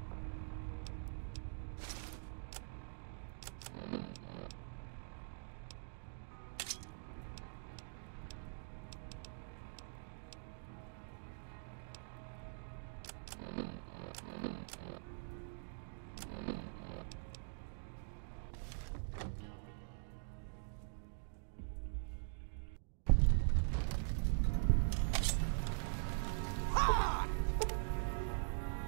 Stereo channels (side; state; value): left; silent; digital silence